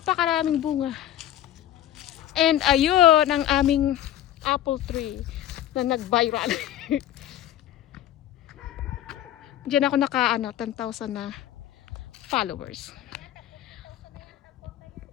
bunga. And ayun ang aming apple tree na nag-viral. Diyan ako naka 10,000 na followers.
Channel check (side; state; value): right; quieter; 12.2 dB